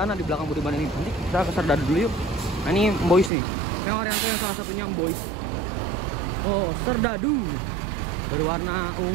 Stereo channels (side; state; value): left; drops out; at 3.3 s